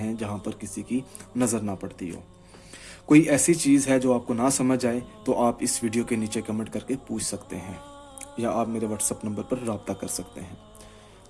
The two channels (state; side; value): identical; both; correlation 1.00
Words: जहाँ पर किसी की नज़र ना पड़ती हो। कोई ऐसी चीज़ है जो आपको ना समझ आए तो आप इस वीडियो के नीचे कमेंट करके पूछ सकते हैं या आप मेरे व्हाट्सअप नंबर पर रब्ता कर सकते हैं।